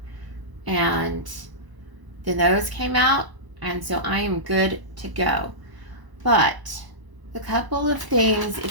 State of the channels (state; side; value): late; left; 1.0 ms